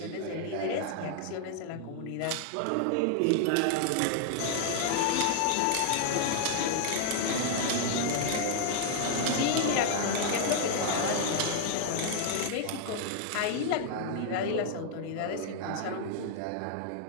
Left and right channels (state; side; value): different; both; correlation 0.00